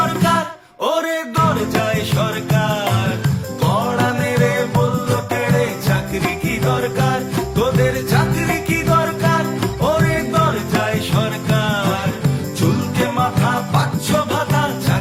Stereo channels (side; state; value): both; identical; correlation 1.00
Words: ওরে দরজায় সরকার, কড়া মেরে বলল তেড়ে চাকরি কি দরকার। তোদের চাকরি কি দরকার ওরে দরজায় সরকার, চুলকে মাথা পাচ্ছ ভাতা